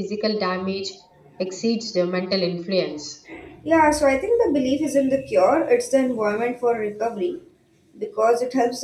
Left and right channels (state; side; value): identical; both; correlation 1.00